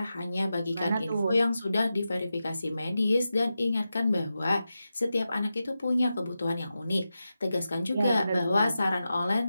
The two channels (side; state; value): both; inverted; correlation -0.91